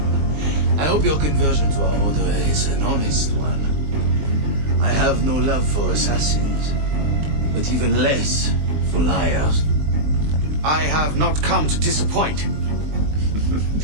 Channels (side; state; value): left; late; 20 ms